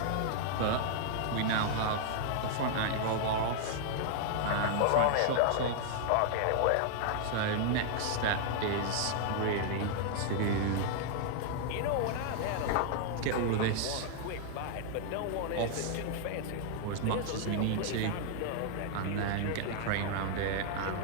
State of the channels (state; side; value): different; both; correlation 0.00